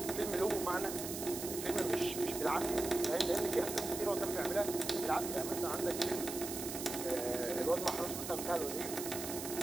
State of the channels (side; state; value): right; noise; hiss, 7 dB below the sound